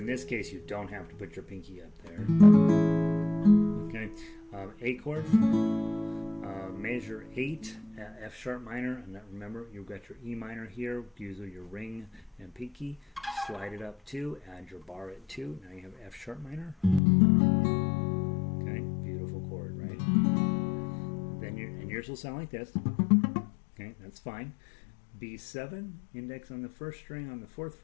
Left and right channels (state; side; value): drops out; right; at 17.0 s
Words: this case, you don't have to put your pinky up there. Okay, A chord, measure 8, F sharp minor, and remember you've got your E minor here, use your ring and pinky, slide it up 2, add your bar at 2, now you have F sharp minor. Okay, beautiful chord, right? Then and yours will sound like this. Okay, that's fine. B7, index on the 1st string on the 4th